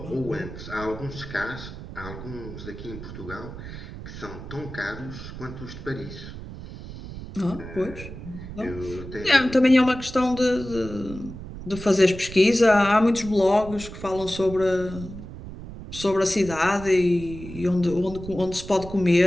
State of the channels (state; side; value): noise; right; rumble, 12 dB below the sound